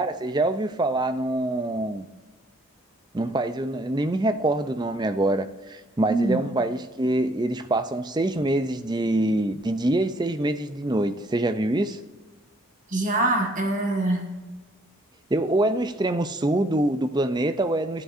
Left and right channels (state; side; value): normal; both; correlation 0.64